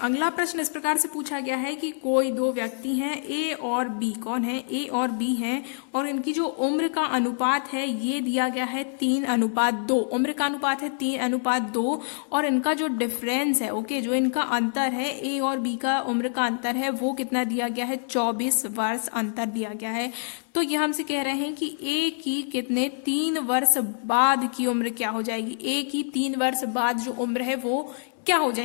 प्रश्न इस प्रकार से पूछा गया है कि कोई दो व्यक्ति हैं, ए और बी। कौन है? ए और बी हैं, और इनकी जो उम्र का अनुपात है ये दिया गया है 3:2। उम्र का अनुपात है 3:2, और इनका जो डिफरेंस है, ओके, जो इनका अंतर है, ए और बी का उम्र का अंतर है वो कितना दिया गया है? 24 वर्ष अंतर दिया गया है। तो ये हमसे कह रहे हैं कि ए की कितने 3 वर्ष बाद की उम्र क्या हो जाएगी? ए की 3 वर्ष बाद जो उम्र है वो क्या हो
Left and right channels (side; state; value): right; silent; 61 dB below the other